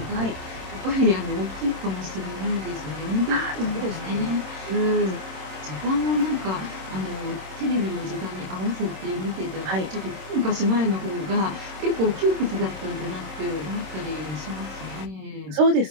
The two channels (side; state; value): left; late; 26 ms